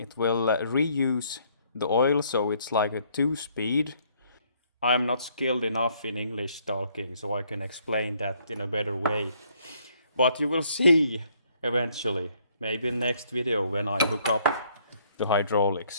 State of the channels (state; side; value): inverted; both; correlation -0.66